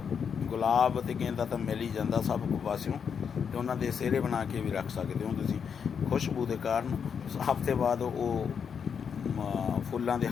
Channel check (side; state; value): right; quieter; 6.9 dB